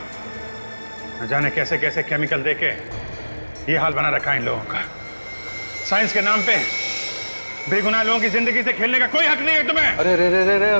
न जाने कैसे कैसे केमिकल देके ये हाल बना रखा है इन लोगों का। साइंस के नाम पे बेगुनाह लोगों की जिंदगी से खेलने का कोई हक नहीं है तुम्हें। अरे रे रे रे रे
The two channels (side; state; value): both; inverted; correlation -1.00